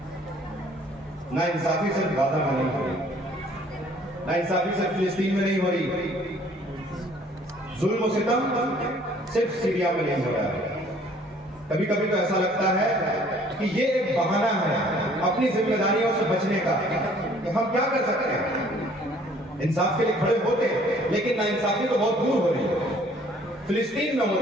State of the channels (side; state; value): both; normal; correlation 0.57